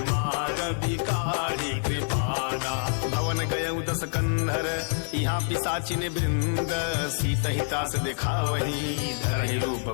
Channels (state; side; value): silent; right; 60 dB below the other